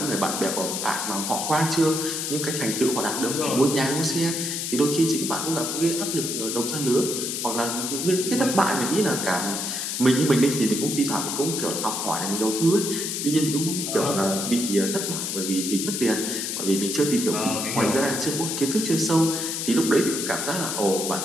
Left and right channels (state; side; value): noise; left; hiss, 3 dB below the sound